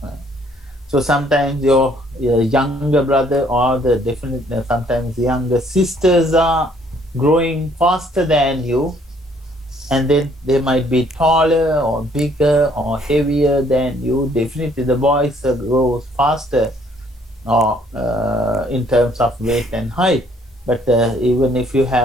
So sometimes your younger brother or the definite sometimes younger sisters are growing faster than you, and then they might be taller or bigger or heavier than you. Definitely the boys grow faster or in terms of weight and height. But even if you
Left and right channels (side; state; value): both; normal; correlation 0.63